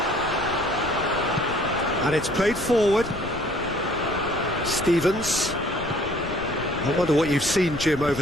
And it's played forward. Stevens. I wonder what you've seen, Jim,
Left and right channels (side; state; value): left; noise; rumble, 12 dB below the sound